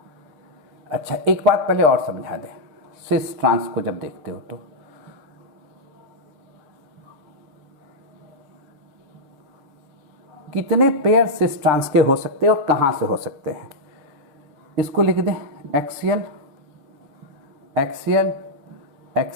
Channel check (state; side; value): late; left; 6.9 ms